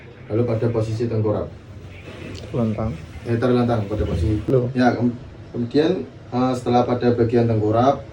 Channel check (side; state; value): both; identical; correlation 1.00